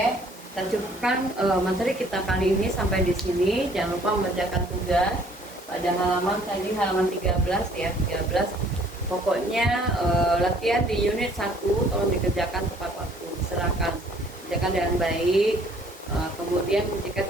kita cukupkan materi kita kali ini sampai di sini. Jangan lupa mengerjakan tugas pada halaman tadi, halaman 13 ya, 13. Pokoknya latihan di unit 1 tolong dikerjakan tepat waktu, silakan kerjakan dengan baik. Kemudian jika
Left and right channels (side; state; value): both; normal; correlation 0.58